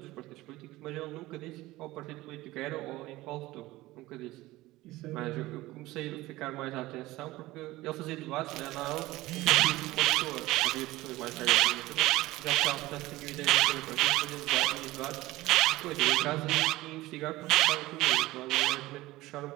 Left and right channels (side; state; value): left; quieter; 18.3 dB